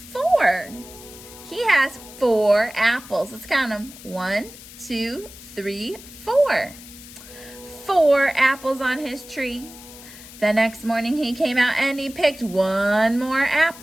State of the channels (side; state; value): left; noise; hiss, 17 dB below the sound